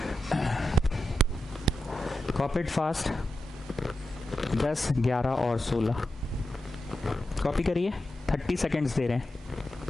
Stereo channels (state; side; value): normal; both; correlation 0.89